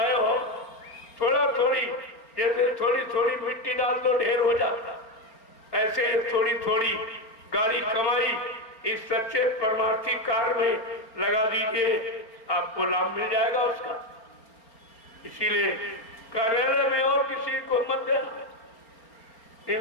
हो, थोड़ा थोड़ी जैसे थोड़ी थोड़ी मिट्टी डाल दो ढेर हो जाता, ऐसे थोड़ी थोड़ी गाड़ी कमाई इस सच्चे परमार्थी कार्य में लगा दीजिए, आपको लाभ मिल जाएगा उसका। इसीलिए कार्यालय में और किसी को मत देना,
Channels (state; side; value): late; right; 4.4 ms